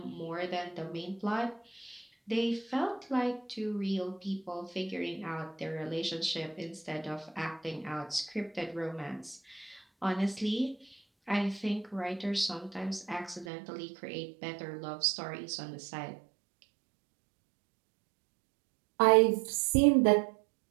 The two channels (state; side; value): drops out; left; at 13.5 s